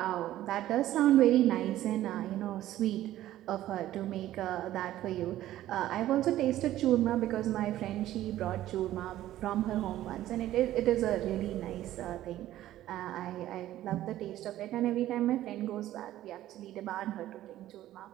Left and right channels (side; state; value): left; quieter; 13.9 dB